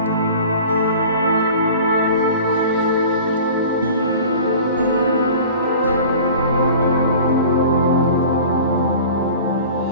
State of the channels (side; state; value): both; inverted; correlation -0.41